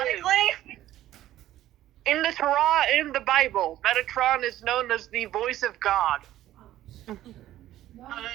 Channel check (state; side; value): quieter; left; 13.7 dB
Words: Honestly, In the Torah and in the Bible, Metatron is known as the voice of God. I